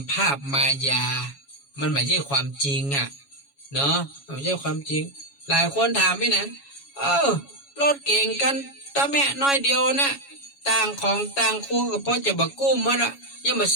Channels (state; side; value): late; right; 7.2 ms